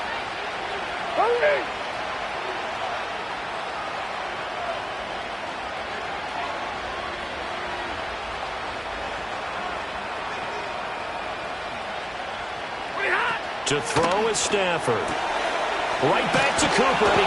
To throw is Stafford. Right back to Cooper, and he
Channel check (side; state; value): both; identical; correlation 1.00